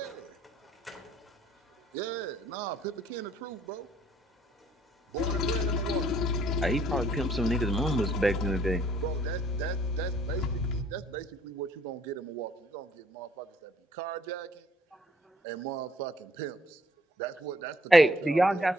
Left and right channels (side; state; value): both; normal; correlation 0.62